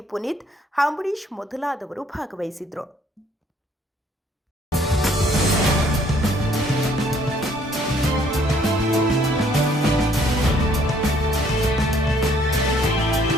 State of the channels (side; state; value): both; normal; correlation 0.64